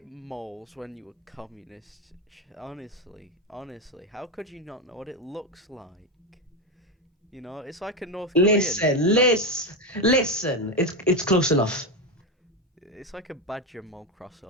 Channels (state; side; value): normal; both; correlation 0.12